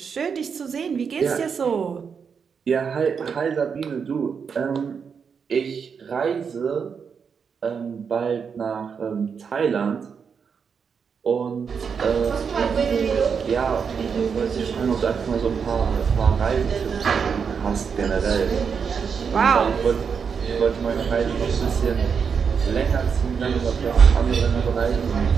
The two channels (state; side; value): quieter; left; 6.4 dB